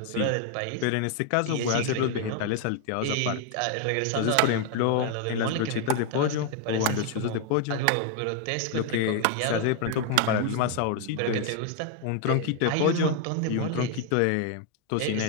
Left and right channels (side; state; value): both; different; correlation 0.00